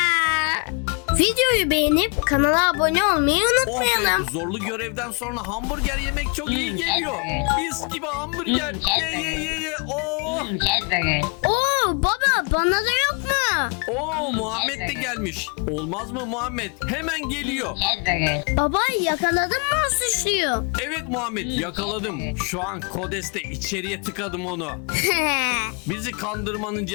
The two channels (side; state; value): right; quieter; 36.4 dB